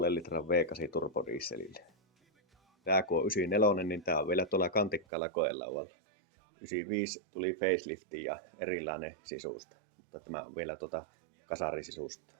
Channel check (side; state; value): left; drops out; at 5.1 s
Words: 6,5 litran V8 turbodieselillä. Tää kun on 94, niin tää on vielä tuolla kantikkaalla koelaualla. 95 tuli facelifti ja erilainen sisusta, mutta tämä on vielä kasarisisusta.